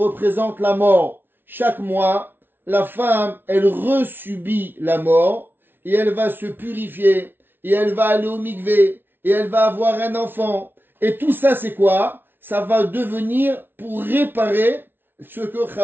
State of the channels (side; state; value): left; late; 0.10 ms